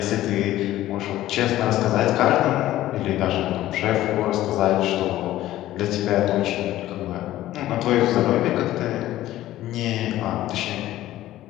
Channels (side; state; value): right; quieter; 14.6 dB